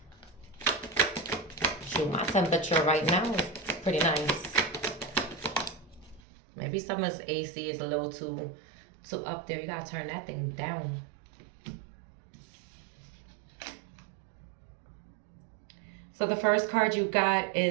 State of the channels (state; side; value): drops out; left; at 6.2 s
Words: Shoot, my temperature right now is pretty nice. Maybe someone's AC is a little too up there. You gotta turn that thing down. So the first card you got